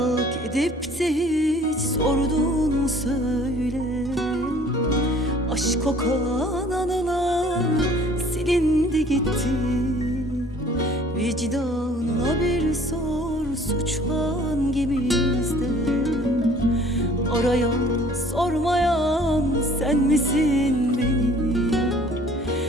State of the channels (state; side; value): normal; both; correlation 0.54